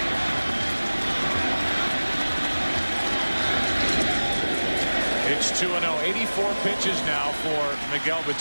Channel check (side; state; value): both; inverted; correlation -1.00